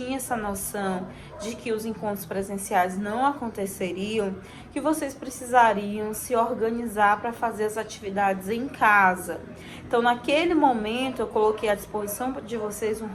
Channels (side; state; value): both; identical; correlation 1.00